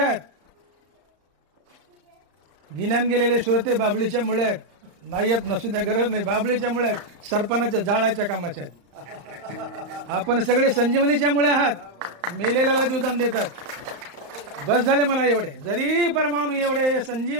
गिन्यान गेलेले श्रोते बाबळीच्या मुळे आहेत, नाही येत नसू द्या, गरज नाही. बाबळीच्या मुळे आहेत, सरपणाच्या जाळाच्या कामाच्या आहेत. आपण सगळे संजीवनीच्या मुळे आहात. मेलेल्याला जीवदान देतात. बस झाले मला एवढे. जरी परमाणू एवढे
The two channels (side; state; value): left; late; 35 ms